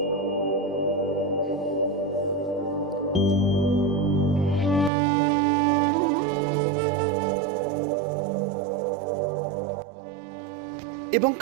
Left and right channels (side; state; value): left; drops out; at 4.9 s